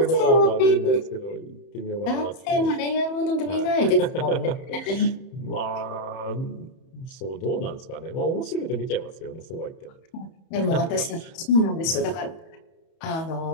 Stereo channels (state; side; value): late; right; 31 ms